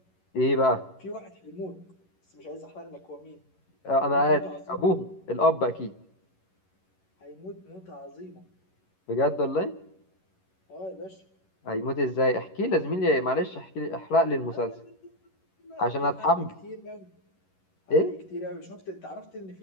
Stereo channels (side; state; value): right; late; 11 ms